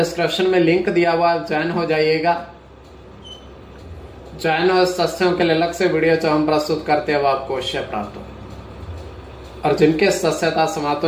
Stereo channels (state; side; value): identical; both; correlation 1.00